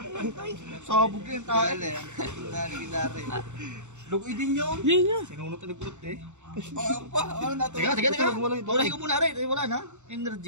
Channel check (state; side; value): late; left; 0.84 ms